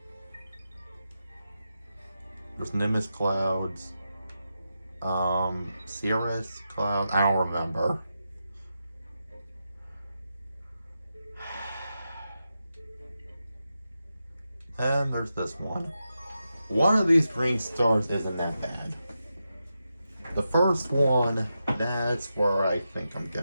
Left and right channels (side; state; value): both; inverted; correlation -0.88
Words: There's Nimbus clouds. Cirrus clouds. I don't remember. And there's this one. One of these green stars isn't that bad. The first one, that's where I think I'm